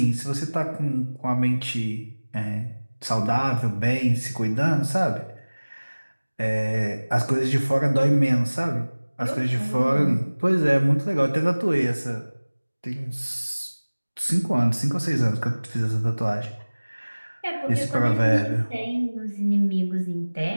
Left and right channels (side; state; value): both; inverted; correlation -1.00